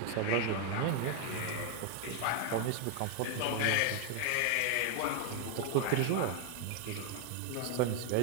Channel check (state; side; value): different; both; correlation 0.01